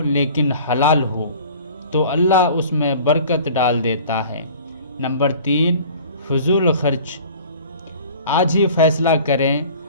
لیکن حلال ہو تو اللہ اس میں برکت ڈال دیتا ہے۔ نمبر 3، فضول خرچ، آج ہی فیصلہ کریں،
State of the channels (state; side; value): inverted; both; correlation -0.45